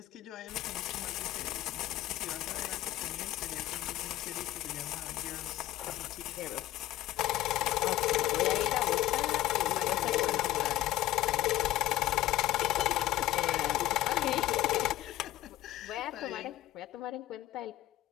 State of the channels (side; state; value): right; quieter; 14.8 dB